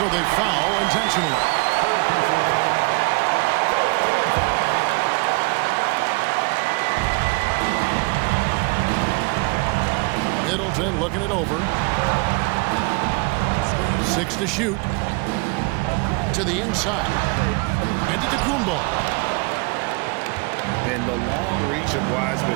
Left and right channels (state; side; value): quieter; left; 29.3 dB